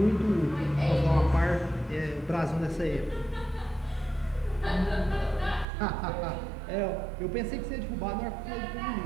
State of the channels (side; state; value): left; drops out; at 5.7 s